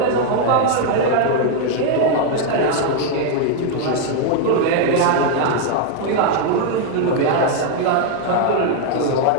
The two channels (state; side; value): different; both; correlation 0.00